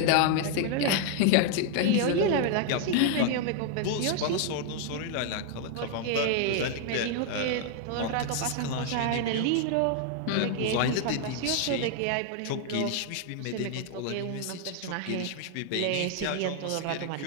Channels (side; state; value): both; different; correlation 0.00